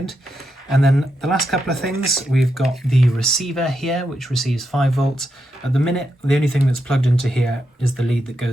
And then the last couple of things, we've got the receiver here, which receives 5 volts. At the minute, the only thing that's plugged into here is the lead that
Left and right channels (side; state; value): both; normal; correlation 0.84